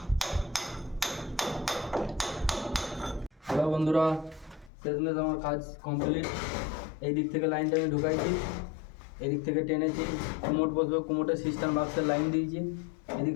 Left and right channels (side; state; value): right; drops out; at 4.7 s